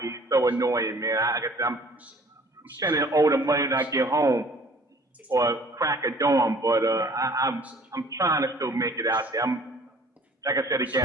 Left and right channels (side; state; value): both; normal; correlation 0.53